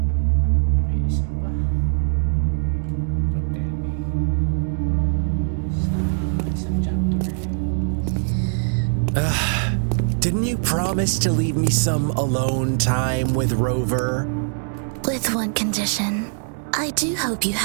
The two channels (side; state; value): left; silent; digital silence